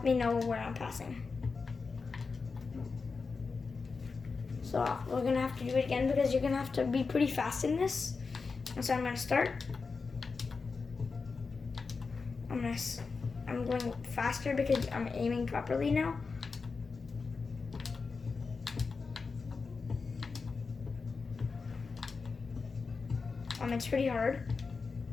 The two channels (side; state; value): right; quieter; 4.6 dB